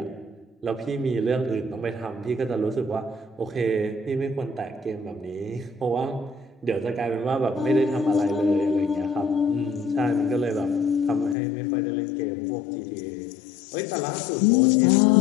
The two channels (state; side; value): drops out; right; at 11.4 s